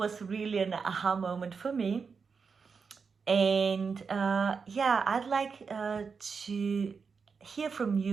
really an aha moment for me. And yeah, I'd like to hear from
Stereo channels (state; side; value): quieter; left; 5.4 dB